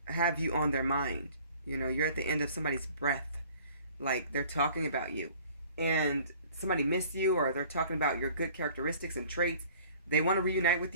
have you on their mind. You're at the end of somebody's breath. Like, they're talking about you. And somebody missed you, or they're talking about your good characteristics and traits. They want to reunite with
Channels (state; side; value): inverted; both; correlation -0.51